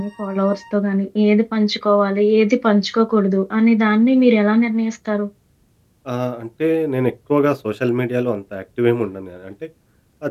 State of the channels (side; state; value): both; identical; correlation 1.00